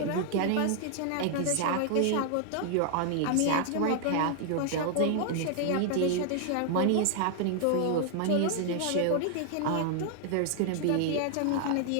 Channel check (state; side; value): different; both; correlation 0.00